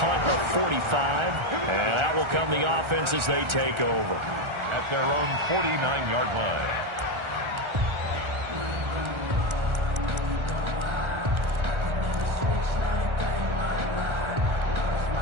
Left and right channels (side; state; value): left; late; 1.4 ms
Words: of 45. And that will come the offense as they take over. At their own 49-yard line.